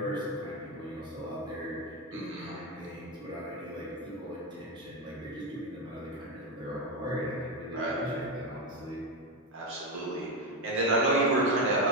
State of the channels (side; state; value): both; normal; correlation 0.11